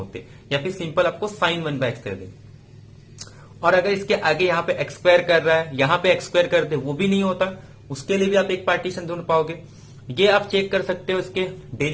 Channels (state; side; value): identical; both; correlation 1.00